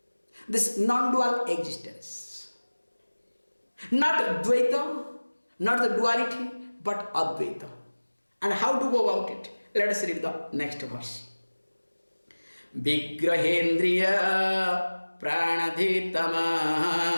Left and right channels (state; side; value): inverted; both; correlation -1.00